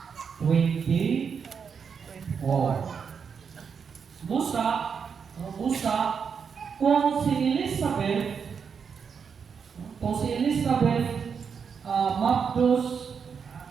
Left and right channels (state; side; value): quieter; left; 6.4 dB